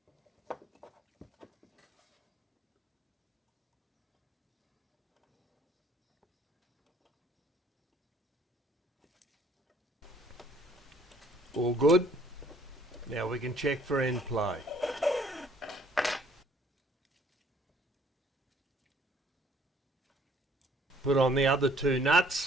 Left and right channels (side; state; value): both; normal; correlation 0.60